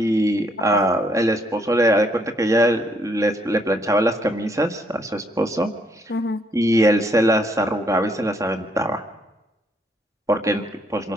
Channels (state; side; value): normal; both; correlation 0.69